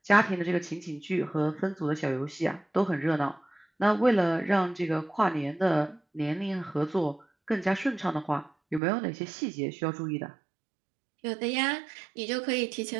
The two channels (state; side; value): drops out; left; at 8.8 s